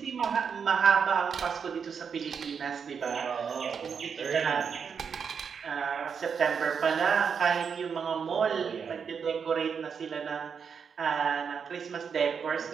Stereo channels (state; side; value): quieter; left; 6.5 dB